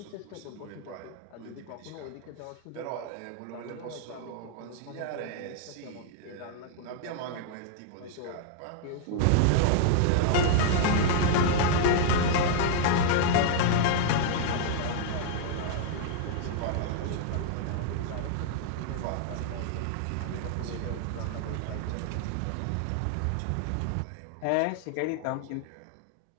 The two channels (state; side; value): different; both; correlation -0.01